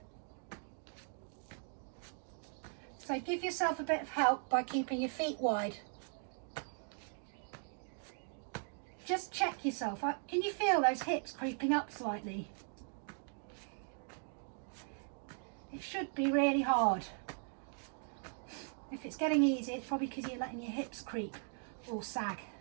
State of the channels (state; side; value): silent; left; 52 dB below the other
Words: So give yourself a bit of help by keeping your feet wide. Just check yourself. Can you feel those hips creeping up slightly? It should be really hard. If it's getting easy, it's probably because you're letting your hips creep or sag.